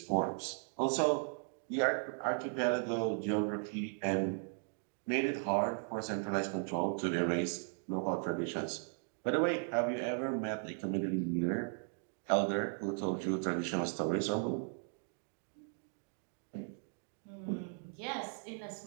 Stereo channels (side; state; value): left; silent; 53 dB below the other